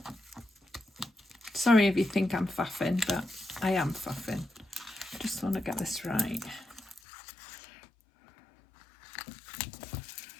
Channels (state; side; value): drops out; right; at 7.0 s